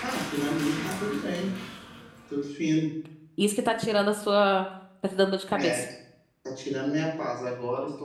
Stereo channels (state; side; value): identical; both; correlation 1.00